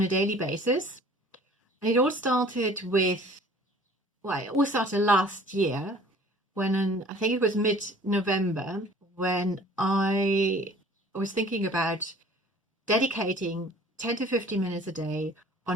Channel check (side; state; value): both; normal; correlation 0.50